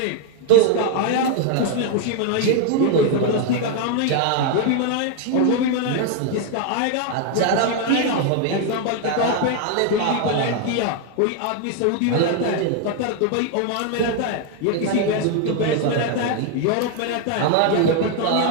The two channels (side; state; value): both; different; correlation 0.01